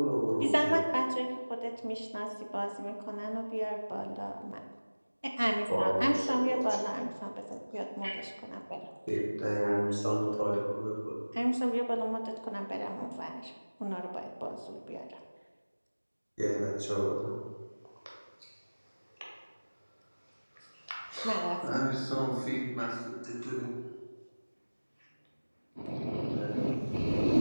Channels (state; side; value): inverted; both; correlation -1.00